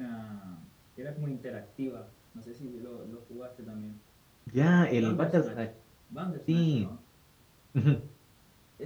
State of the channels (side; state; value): both; identical; correlation 1.00